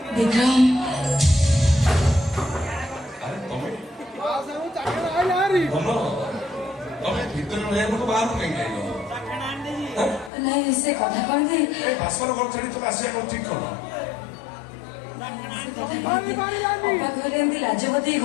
ବିକ୍ରମ ଆରେ ତମେ ତମେ ଭିତରେ ରହିବାକୁ ବାହାରକୁ କାହିଁକି ଆଇଲ? ନାଇଁ ସେ କଥା କଣ କି ଏ ବାସର ଘର ଛାଡି ତମେ ଆସିବା କଣ ଠିକ କଲ? ଘରେ ଏମିତି ଲାଜପତି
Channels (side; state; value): right; drops out; at 10.3 s